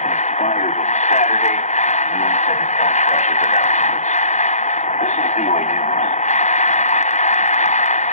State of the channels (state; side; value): late; right; 0.34 ms